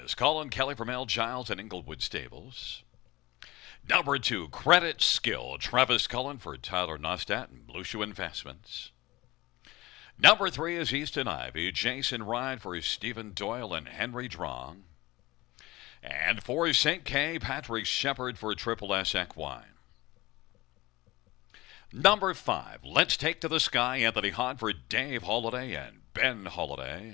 Colin Kelly from L. Giles and Inglewood Stables. Number 2, Credit Skill. Travis Cullen for Tyler Nostat and Blue Shoe Investments. Number 3 is Easton Ivy. Jason Ride for Stephen Doyle and Henry Drong. And for St. K, Patrick Shepard for Triple S Equine. Number 5, Let's Take to the Sky, Anthony Hahn for Dave Holiday and Ben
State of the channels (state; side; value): quieter; right; 19.7 dB